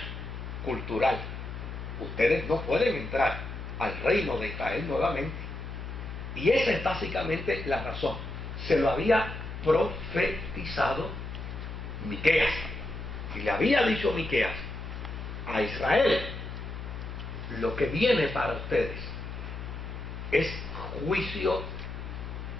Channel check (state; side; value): noise; left; hum, 8 dB below the sound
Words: cultural, ustedes no pueden entrar al reino de Israel nuevamente. Y esa es básicamente la razón. Se lo había profetizado Miqueas, y le había dicho Miqueas a Israel, lo que viene para ustedes es juicio